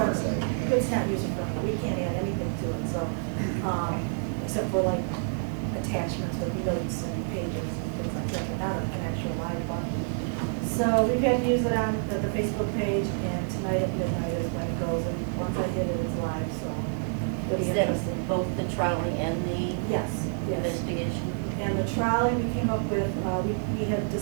friendly. side. It's not user friendly, we can't add anything to it, so, except for like attachments with notes and pages and things like that, but not an actual live button. So we've had to use it on the Facebook page, and tonight at midnight is when it goes, and once I hit it, it's live, so it'll be Is that interesting. both the trolley and the Yes, yes. investigation? And the trolley we came up with, we had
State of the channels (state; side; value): silent; left; digital silence